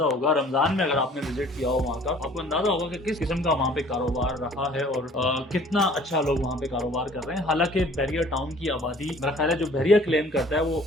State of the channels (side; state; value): both; normal; correlation 0.52